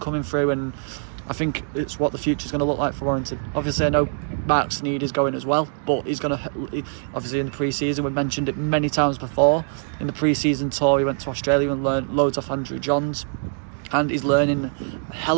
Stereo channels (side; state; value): left; silent; 62 dB below the other